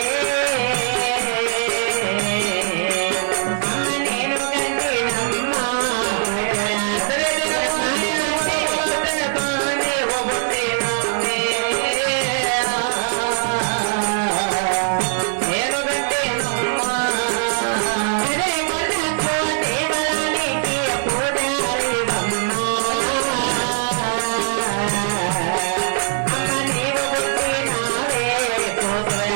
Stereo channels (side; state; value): left; silent; digital silence